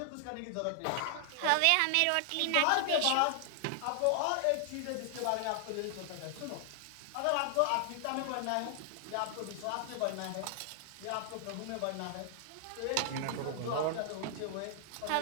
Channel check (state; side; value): different; both; correlation 0.00